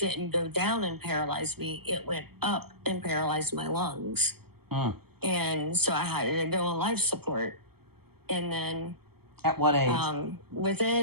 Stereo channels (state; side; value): late; left; 0.96 ms